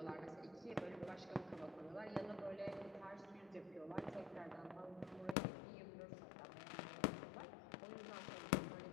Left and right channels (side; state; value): right; drops out; at 5.4 s